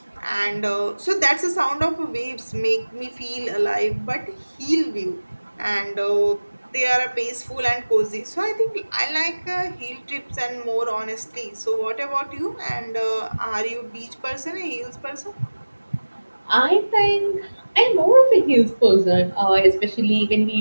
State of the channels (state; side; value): inverted; both; correlation -1.00